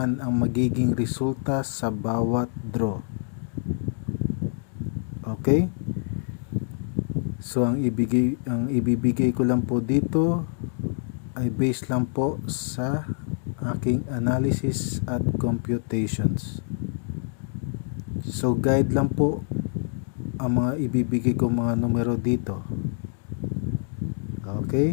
ang magiging resulta sa bawat draw. Okay? So ang ibibigay ko lang po dito ay based lang po sa aking analysis at computations. So guide lang po ang mga ibibigay ko mga numero dito.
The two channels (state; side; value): silent; right; 61 dB below the other